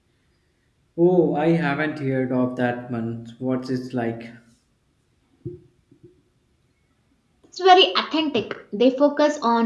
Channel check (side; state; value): both; identical; correlation 1.00